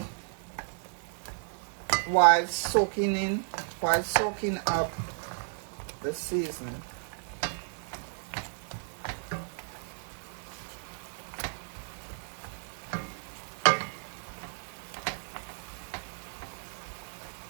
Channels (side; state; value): left; silent; digital silence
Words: while soaking up the seasoning.